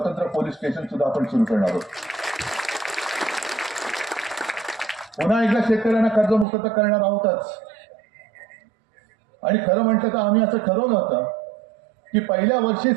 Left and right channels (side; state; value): left; drops out; at 6.5 s